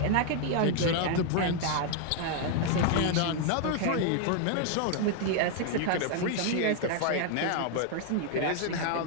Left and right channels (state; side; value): different; both; correlation 0.00